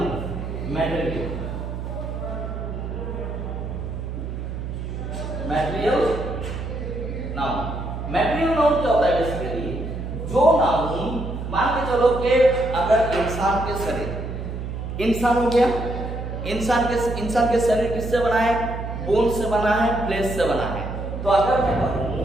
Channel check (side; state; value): right; noise; hum, 6 dB below the sound